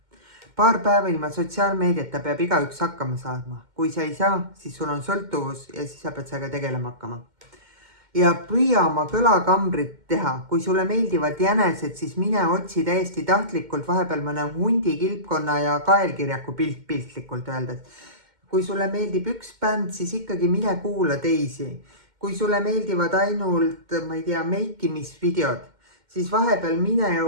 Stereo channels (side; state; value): left; late; 2.1 ms